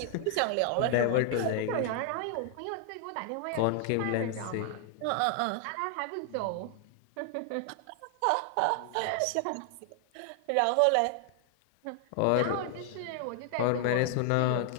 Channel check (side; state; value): both; different; correlation 0.00